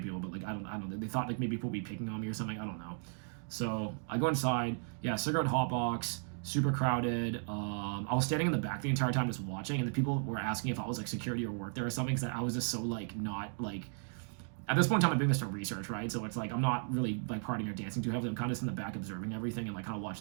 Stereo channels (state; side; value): silent; left; 54 dB below the other